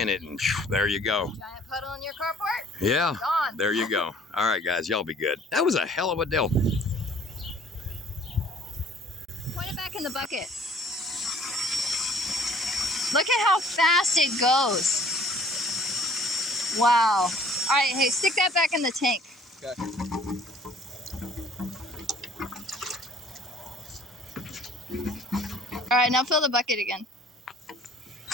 it, and there you go. Giant puddle in your carport? Yeah, Gone. there you go. All right, guys, y'all be good. That was a hell of a deal. Point it back in the bucket. Look at how fast it goes. Wow. All right, hey, stick that back in the tank. Okay. All right, now fill the bucket again.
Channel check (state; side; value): normal; both; correlation 0.55